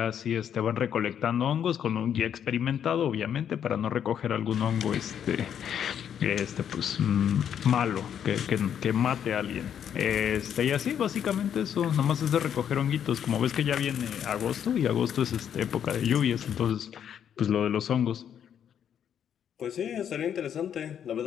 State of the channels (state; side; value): quieter; right; 8.9 dB